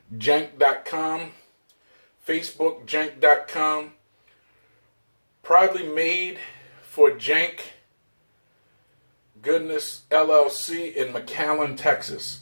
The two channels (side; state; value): both; inverted; correlation -1.00